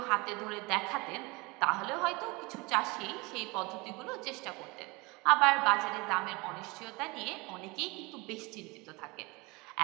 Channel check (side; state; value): left; quieter; 25.3 dB